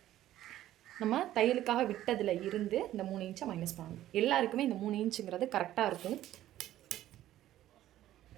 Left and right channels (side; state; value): left; quieter; 13.4 dB